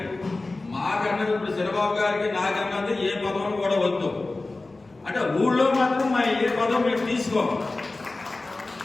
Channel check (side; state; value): right; quieter; 3.2 dB